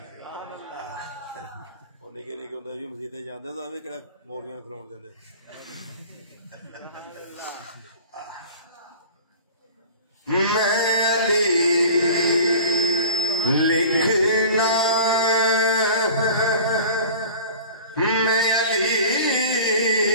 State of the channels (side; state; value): both; inverted; correlation -0.41